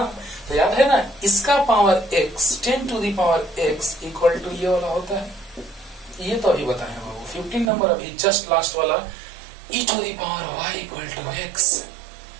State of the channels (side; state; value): left; drops out; at 7.7 s